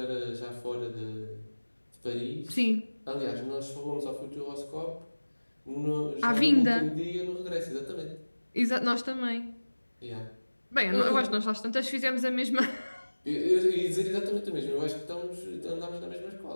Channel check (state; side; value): inverted; both; correlation -1.00